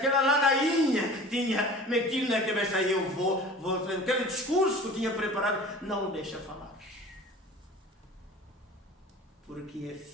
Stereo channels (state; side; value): normal; both; correlation 0.41